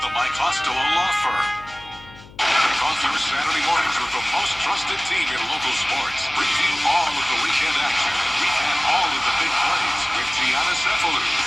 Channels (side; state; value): left; noise; hum, 21 dB below the sound